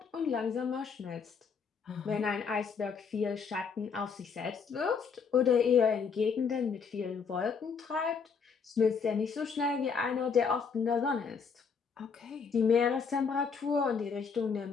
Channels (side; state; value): right; quieter; 5.9 dB